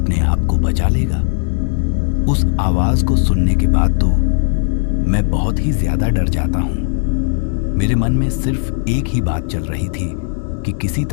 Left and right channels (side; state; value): right; silent; 69 dB below the other